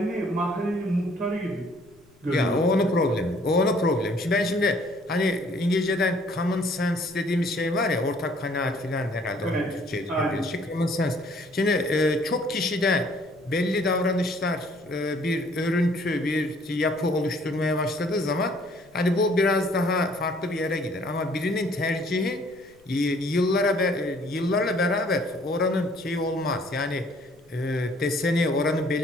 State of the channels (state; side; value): noise; left; rumble, 30 dB below the sound